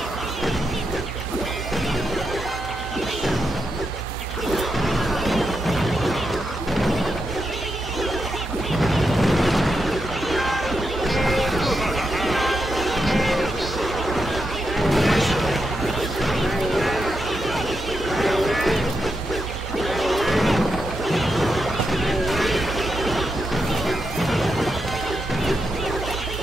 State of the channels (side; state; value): both; normal; correlation 0.85